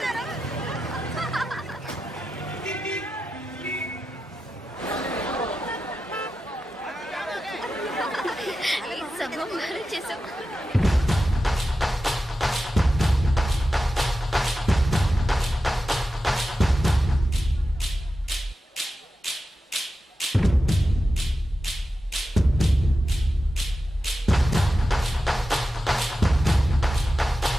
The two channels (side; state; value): both; normal; correlation 0.91